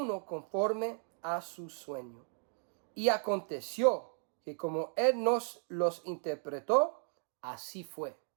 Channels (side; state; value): left; silent; 54 dB below the other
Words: conforme a su sueño. Y aconteció que como él nos los interpretó, así fue.